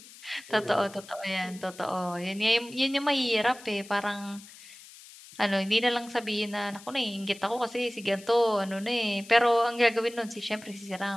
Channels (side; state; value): left; noise; hiss, 19 dB below the sound